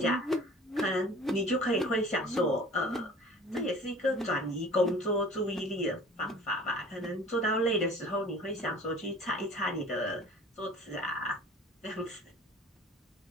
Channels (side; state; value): both; normal; correlation 0.46